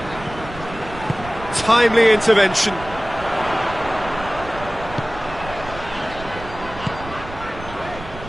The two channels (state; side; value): noise; right; rumble, 13 dB below the sound